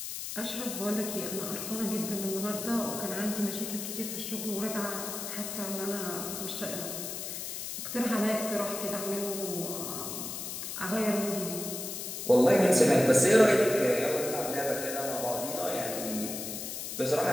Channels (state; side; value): noise; left; hiss, 6 dB below the sound